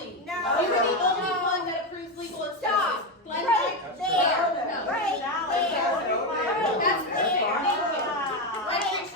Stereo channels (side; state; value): both; normal; correlation 0.11